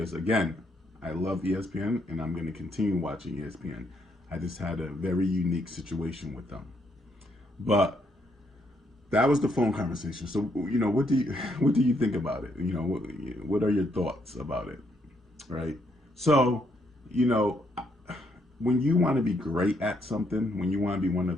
again, I love ESPN and I'm going to continue watching ESPN. I just had a very unique situation with them. But that was the phone conversation. So, what do you think about it? What are your thoughts about it? Right? So, when you want to be great at something, when you want to be one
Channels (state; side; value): normal; both; correlation 0.74